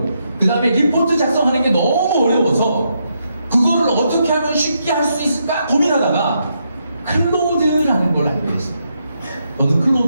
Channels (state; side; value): inverted; both; correlation -0.80